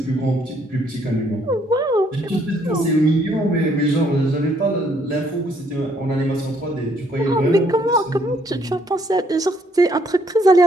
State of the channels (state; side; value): normal; both; correlation 0.68